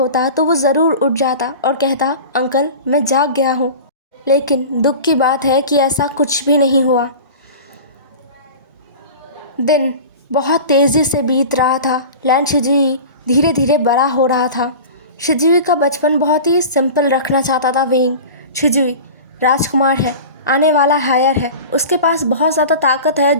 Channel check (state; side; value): inverted; both; correlation -0.35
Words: तो वो ज़रूर उठ जाता और कहता, अंकल मैं जाग गया हूँ। लेकिन दुख की बात है कि ऐसा कुछ भी नहीं हुआ। दिन बहुत तेज़ी से बीत रहा था। लैन शिजुई धीरे धीरे बड़ा हो रहा था। शिजुई का बचपन बहुत ही सिंपल रखना चाहता था विंग। शिजुई राजकुमार है, आने वाला हायर है, उसके पास बहुत ज़्यादा ताकत है